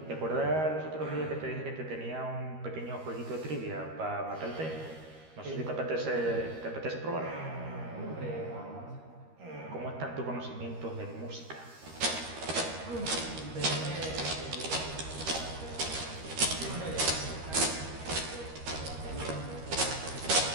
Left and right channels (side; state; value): left; late; 13 ms